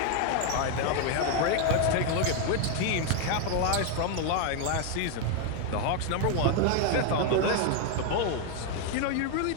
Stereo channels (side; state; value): both; different; correlation 0.01